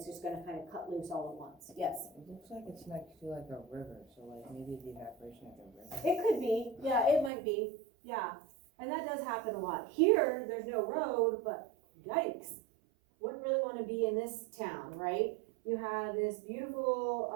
just going to kind of cut loose all at once. Yes? It looks like it's next to like a river, so like maybe the evaporation of the river. It could be. Yeah, it might be. Yeah. And that does happen a lot. Here, there's no road, but yikes. Wouldn't really want to be in this town, right? You have this beautiful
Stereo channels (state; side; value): drops out; left; at 7.3 s